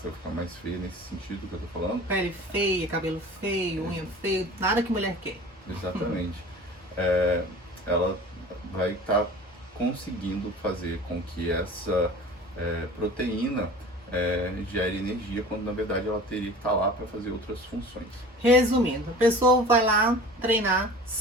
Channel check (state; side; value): normal; both; correlation 0.41